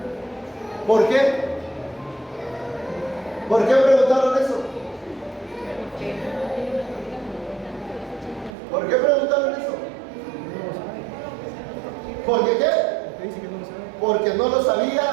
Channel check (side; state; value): left; drops out; at 8.5 s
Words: ¿Por qué? ¿Por qué preguntaron eso? ¿Por qué preguntaron eso? ¿Por qué qué? Porque no lo